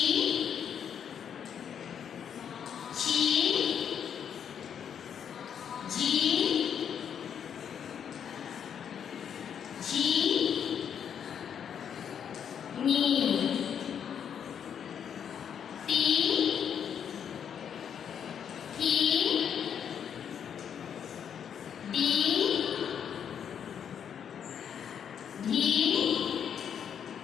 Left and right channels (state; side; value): quieter; right; 8.2 dB